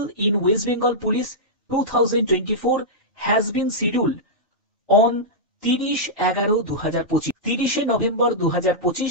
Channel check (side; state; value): both; normal; correlation -0.10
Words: in West Bengal police 2024 has been scheduled on 30/11/2025 30 November